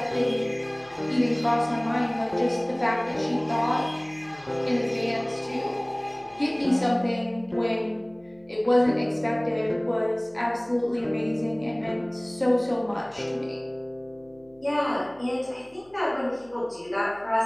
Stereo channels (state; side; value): noise; left; hum, 29 dB below the sound